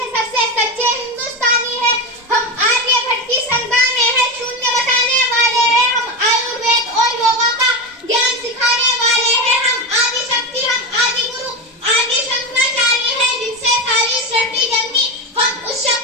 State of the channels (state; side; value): normal; both; correlation 0.17